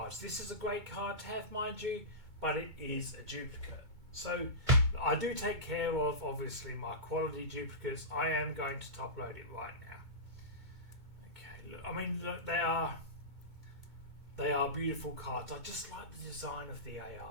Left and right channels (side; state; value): left; late; 2.2 ms